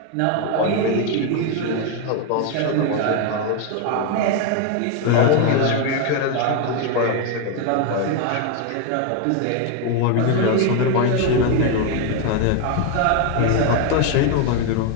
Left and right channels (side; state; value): both; different; correlation 0.01